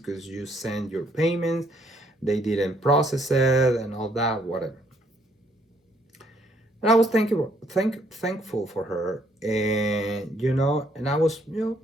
you sent your payments, they didn't process it and all that, whatever. And I was thankful for her, and and I was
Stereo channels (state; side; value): normal; both; correlation 0.68